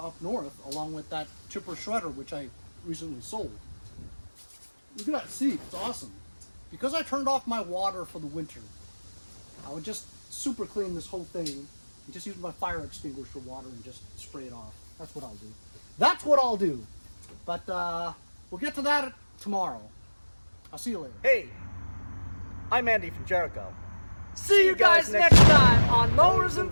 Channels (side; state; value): both; inverted; correlation -1.00